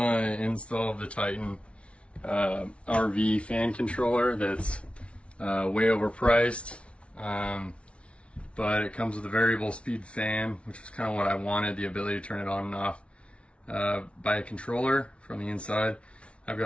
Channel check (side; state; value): right; late; 0.061 ms